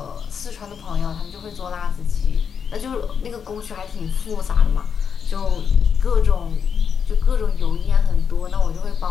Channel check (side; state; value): right; quieter; 7.0 dB